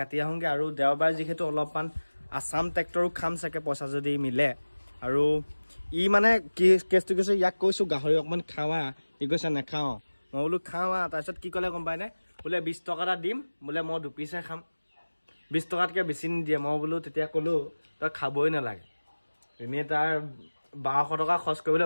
আহোঁগে আৰু দেওবাৰ যিহেতু অলপমান আছাম ট্ৰেক্টৰো খাম চাগে পইচা যদি মিলে আৰু ই মানে কি কেছটো কৈছে ইয়াক কৈছোঁ গাহৰি অকণমান খাৱা ই কৈছে নাখাওঁ মই বোলো খাওঁ তাৰপিছত কি ক'লে গম পাই নাই বোলে 20 টকা এটা দিম বোলে মই দুপিচহে খাম 20 টকাতকৈ বেছি নিদিয়ে মই বোলো তেতিয়া ক'লোঁ তই খাবই নালাগে এনেই তাৰ 1200 টকা খৰচ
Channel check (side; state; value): both; inverted; correlation -1.00